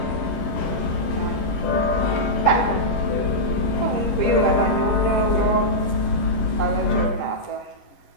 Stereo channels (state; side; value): late; right; 11 ms